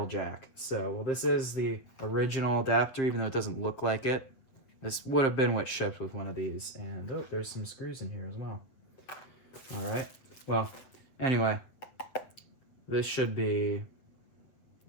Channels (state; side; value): late; right; 8.2 ms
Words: jack. So, well, this is the original adapter, even though it doesn't look like it. This would have been what shipped with one of these. And, oh, there's some screws in here as well. All right. Well, anyway, this should be...